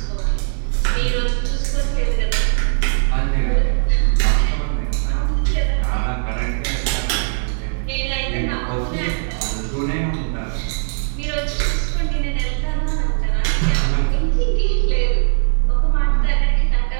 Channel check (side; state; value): left; silent; digital silence